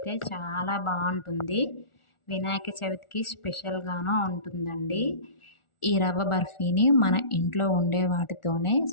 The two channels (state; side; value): late; right; 1.4 ms